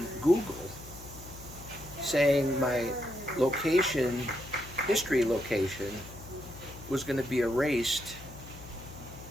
Google saying my location, history location, was going to be erased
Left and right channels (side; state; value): left; noise; hum, 15 dB below the sound